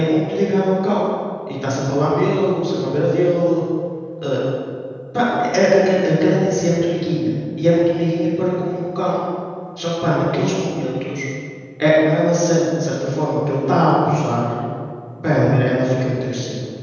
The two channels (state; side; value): identical; both; correlation 1.00